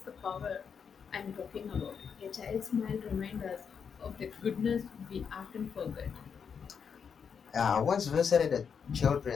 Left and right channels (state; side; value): quieter; right; 6.7 dB